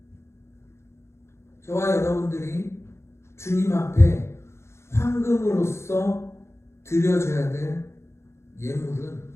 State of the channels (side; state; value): right; late; 0.13 ms